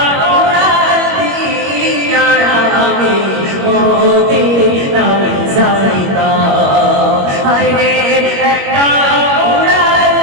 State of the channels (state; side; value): late; left; 21 ms